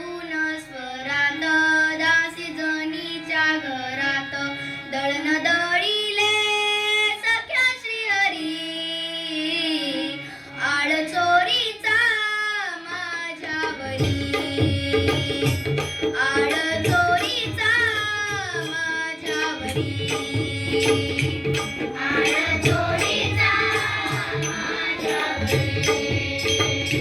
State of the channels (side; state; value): both; identical; correlation 1.00